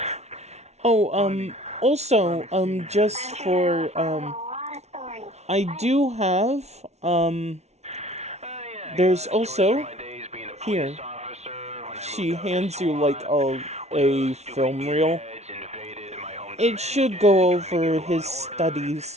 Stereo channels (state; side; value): late; left; 0.31 ms